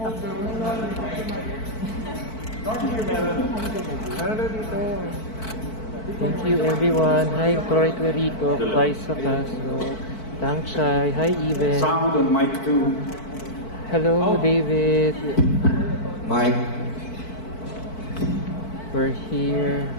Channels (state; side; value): late; right; 4.5 ms